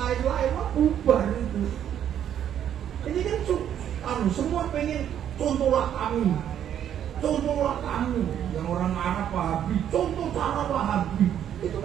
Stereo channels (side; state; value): left; quieter; 9.9 dB